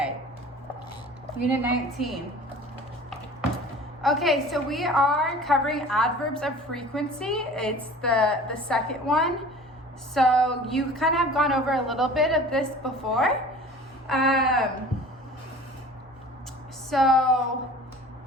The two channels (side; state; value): both; normal; correlation 0.43